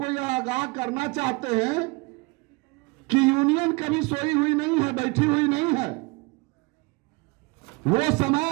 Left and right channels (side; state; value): left; quieter; 26.7 dB